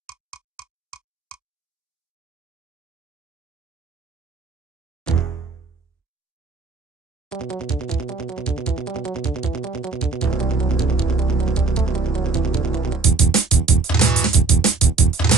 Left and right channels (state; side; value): quieter; left; 3.9 dB